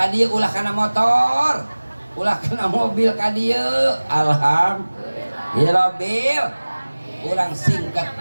dieu ulah kana motor, ulah kana mobil ka dieu. Alhamdulillah. Urang singkat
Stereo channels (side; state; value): both; inverted; correlation -1.00